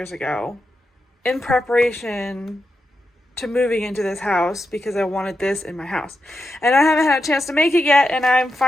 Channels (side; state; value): both; normal; correlation 0.87